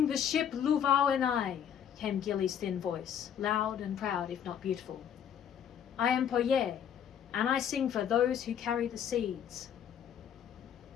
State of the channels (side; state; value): right; quieter; 8.9 dB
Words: the ship Luvau and I," came Gilly's thin voice, loud and proud if not beautiful. "I am Poye, and I sing for those who carry the seeds."